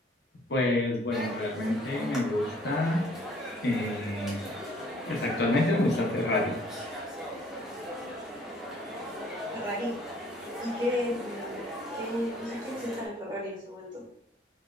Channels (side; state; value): both; normal; correlation 0.59